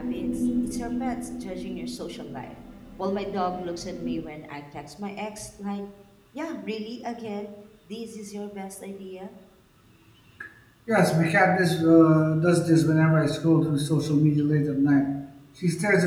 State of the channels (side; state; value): both; identical; correlation 1.00